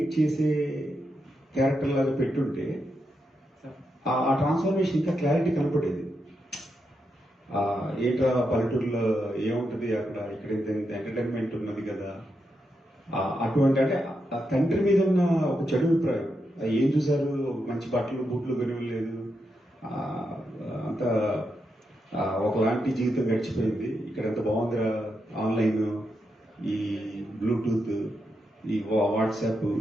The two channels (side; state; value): both; normal; correlation 0.84